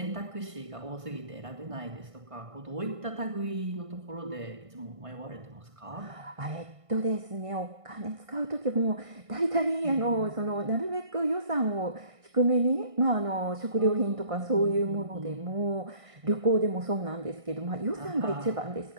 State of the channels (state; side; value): late; left; 1.5 ms